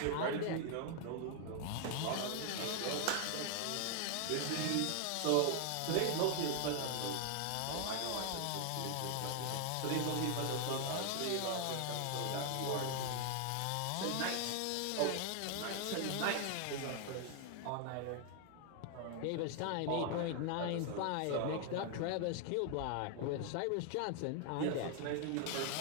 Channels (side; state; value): both; different; correlation 0.00